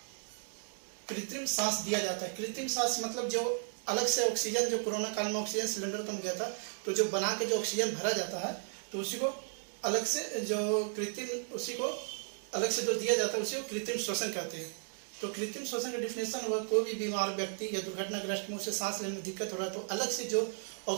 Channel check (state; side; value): silent; left; 55 dB below the other